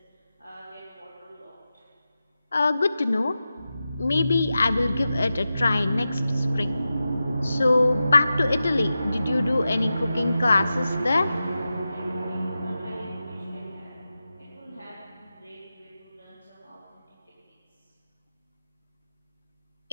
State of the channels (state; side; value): inverted; both; correlation -0.92